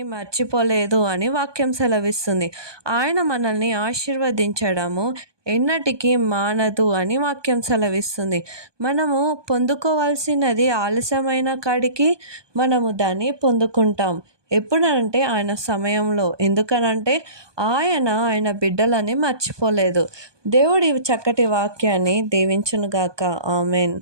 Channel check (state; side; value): late; left; 1.2 ms